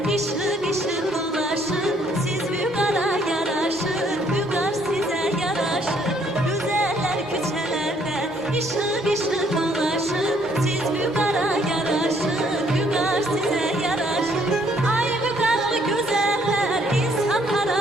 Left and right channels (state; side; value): normal; both; correlation 0.66